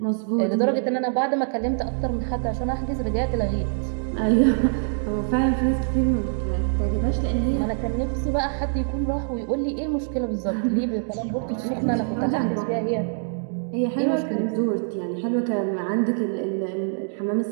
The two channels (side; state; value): left; silent; digital silence